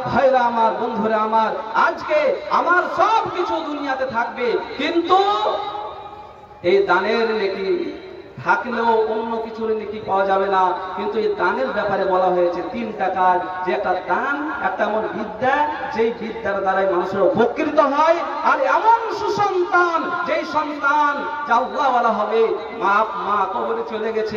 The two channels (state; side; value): identical; both; correlation 1.00